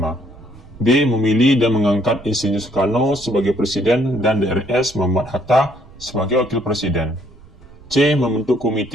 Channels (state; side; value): noise; right; rumble, 22 dB below the sound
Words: B. Memilih dan mengangkat Insinyur Soekarno sebagai Presiden dan DRS Muhammad Hatta sebagai Wakil Presiden. C. Membentuk